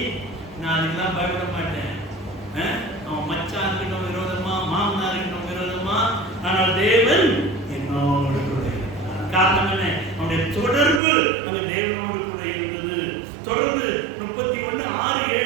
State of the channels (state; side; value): drops out; left; at 11.0 s